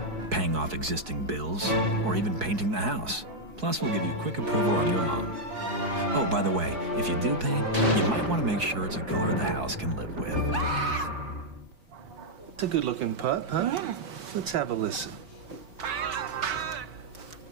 paying off existing bills, or even painting the house. Plus, we'll give you quick approval on your loan. Oh, by the way, if you do paint, you might want to make sure it's a color the house can live with. It's a good-looking putt, huh? Yeah. Let's have a listen.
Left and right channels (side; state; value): left; late; 4.7 ms